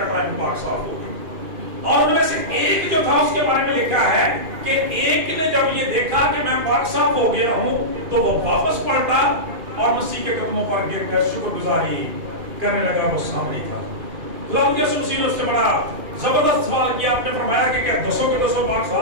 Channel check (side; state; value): left; late; 2.5 ms